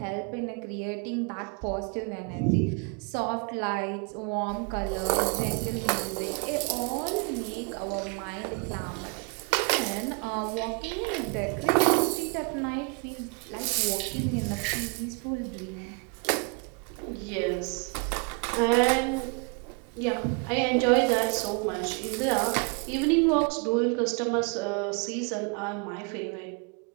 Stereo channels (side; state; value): left; quieter; 34.2 dB